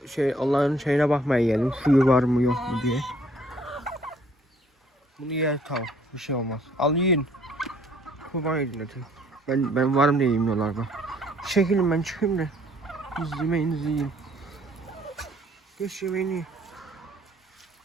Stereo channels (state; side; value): normal; both; correlation 0.61